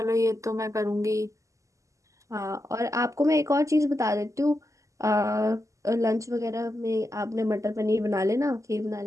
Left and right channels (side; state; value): left; late; 0.16 ms